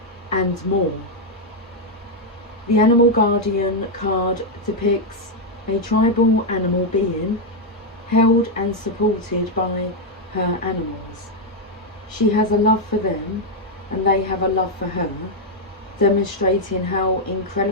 and more. The Animal Guardian card depicts a tribal animal being held and supported by her animals. She has a love for them and they have a love for her, demonstrating how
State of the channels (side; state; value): both; normal; correlation 0.01